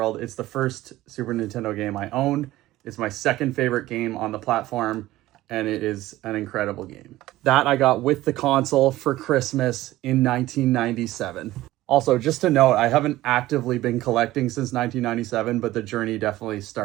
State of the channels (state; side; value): quieter; left; 16.3 dB